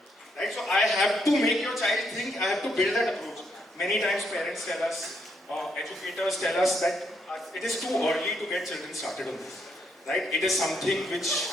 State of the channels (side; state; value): both; normal; correlation 0.75